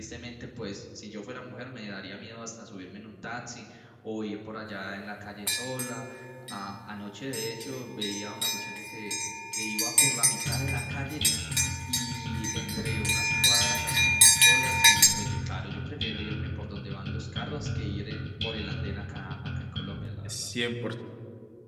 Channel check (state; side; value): identical; both; correlation 1.00